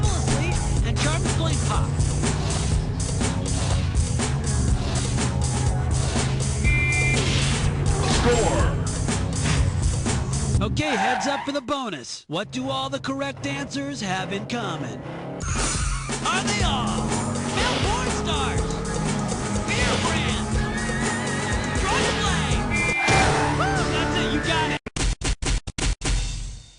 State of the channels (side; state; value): both; identical; correlation 1.00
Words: and charm blink pop. Okay, heads up for the bonus. What do all the correct answers have in common? Are they all male porn stars, beer brands, drug play? Woo, that's it, you got it.